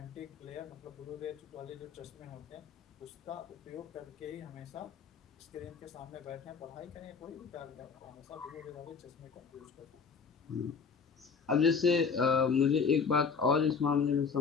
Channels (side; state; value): right; quieter; 5.6 dB